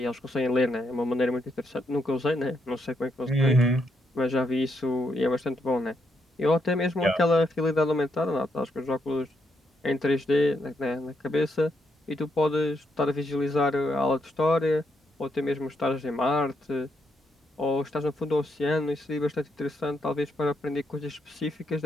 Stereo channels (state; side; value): normal; both; correlation 0.78